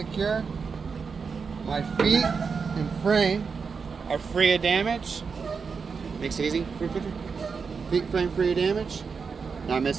My feet and frame are free of damage. Makes it easy. Feet frame free of damage. Not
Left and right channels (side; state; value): left; quieter; 5.4 dB